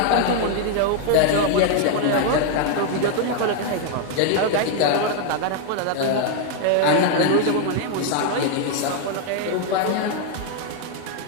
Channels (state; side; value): different; both; correlation 0.00